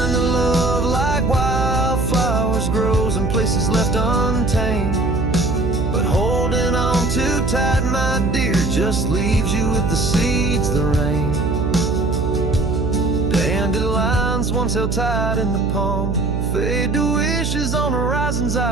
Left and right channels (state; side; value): noise; right; hum, 1 dB below the sound